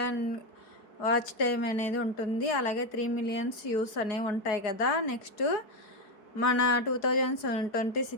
వాచ్ టైం అనేది ఉంటుంది. అలాగే 3 మిలియన్స్ వ్యూస్ అనేవి ఉంటాయి కదా. నెక్స్ట్ మన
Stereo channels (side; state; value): right; late; 4.6 ms